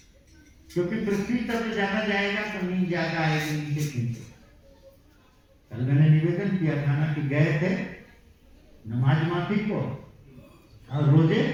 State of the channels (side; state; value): both; identical; correlation 1.00